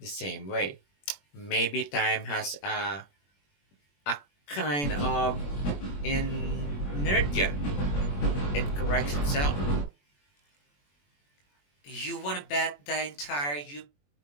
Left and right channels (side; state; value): right; late; 21 ms